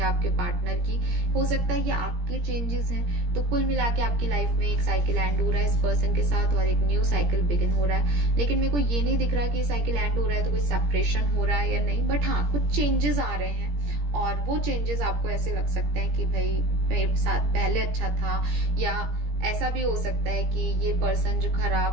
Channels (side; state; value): left; late; 17 ms